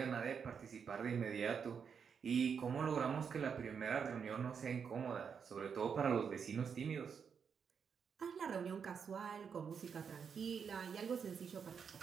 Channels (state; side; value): quieter; left; 6.7 dB